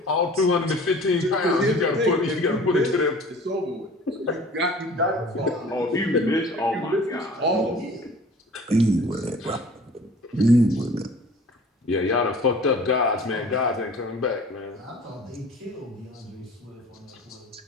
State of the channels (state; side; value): normal; both; correlation 0.46